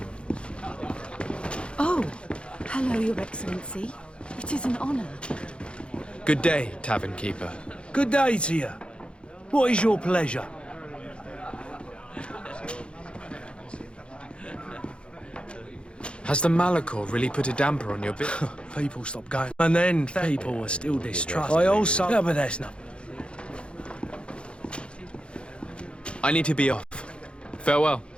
Oh, hello, Your Excellency. It is an honor. Good day, tavern keeper. Good day to you. What is your pleasure? Has the Malachor really put a damper on your bit? People stopped going. And then people were still distrustful. I also... Yeah, but that's not... I need to be off. Farewell.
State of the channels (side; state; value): right; late; 0.056 ms